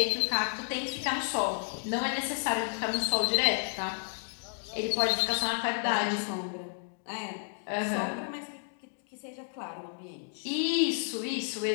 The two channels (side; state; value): right; silent; digital silence